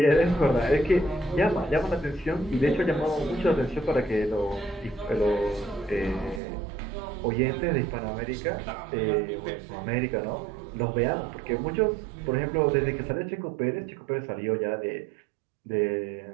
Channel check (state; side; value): drops out; left; at 6.4 s